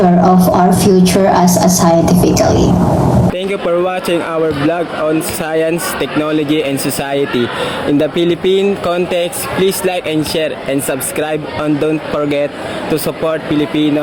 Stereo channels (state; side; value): identical; both; correlation 1.00